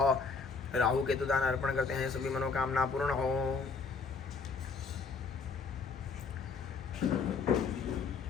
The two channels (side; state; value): right; quieter; 4.9 dB